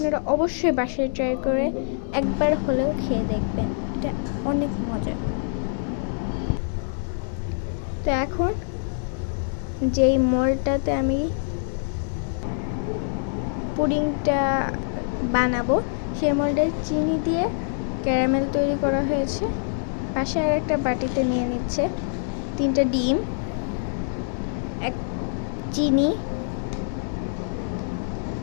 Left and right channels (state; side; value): silent; right; digital silence